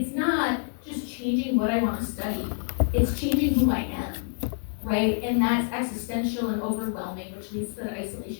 not just changing what I want to study. It's changing who I am, right? And that's existential and overwhelming, which leads to that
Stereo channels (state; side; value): silent; right; 57 dB below the other